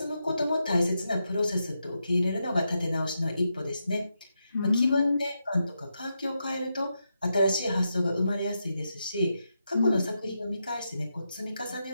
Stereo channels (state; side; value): inverted; both; correlation -0.86